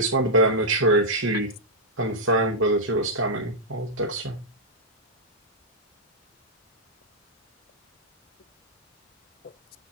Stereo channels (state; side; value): normal; both; correlation -0.07